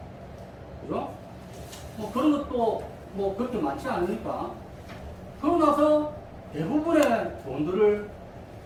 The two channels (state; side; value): identical; both; correlation 1.00